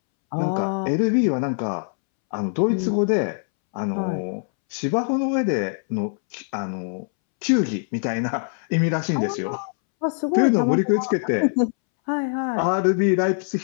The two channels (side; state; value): right; silent; 64 dB below the other